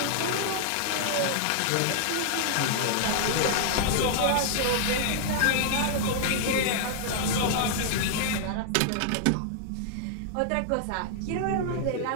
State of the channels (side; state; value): both; different; correlation -0.01